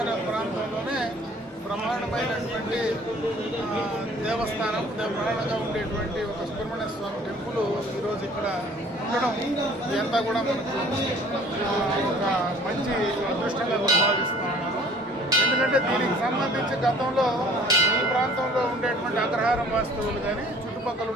ప్రాంతంలోనే బ్రహ్మాండమైనటువంటి దేవస్థానం బ్రహ్మాండంగా ఉండేటువంటి ఒక సుబ్రహ్మణ్య స్వామి టెంపుల్ ఈరోజు ఇక్కడ ఉండడం ఇదంతా కూడా మనకు ఒక మంచి అదృష్టంగా భావిస్తున్నాను. ఎందుకంటే దీనికి సంబంధించి గతంలో ఈ ప్రాంతంలో ఉండేటువంటి అగ్రహారం వాస్తవులు కానీ చుట్టుపక్కల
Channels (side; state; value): both; normal; correlation 0.53